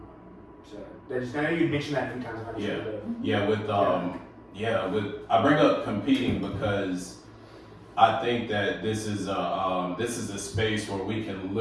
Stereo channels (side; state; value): both; identical; correlation 1.00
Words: So, I know you mentioned that a few times. I bring up competing because I think that this is a space where we can